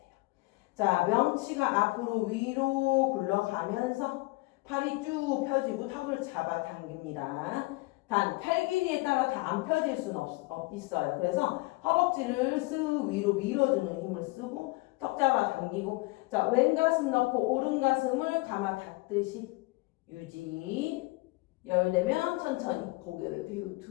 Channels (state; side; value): quieter; right; 23.1 dB